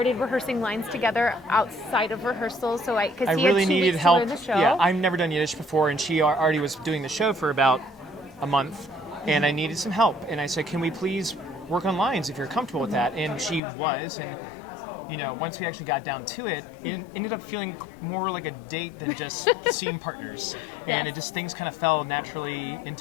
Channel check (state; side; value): drops out; right; at 13.6 s